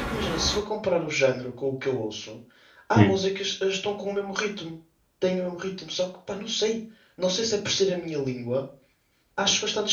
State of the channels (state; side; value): identical; both; correlation 1.00